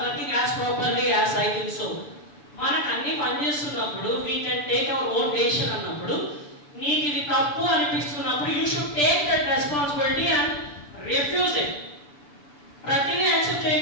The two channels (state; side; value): late; right; 6.8 ms